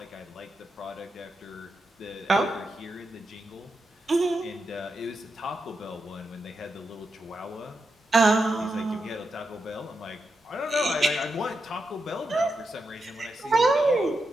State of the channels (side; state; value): both; normal; correlation 0.86